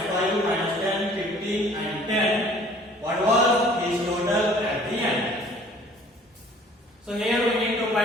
5, minus 10, 15 and 10, what was his total at the end? So here we need to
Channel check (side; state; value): both; normal; correlation 0.52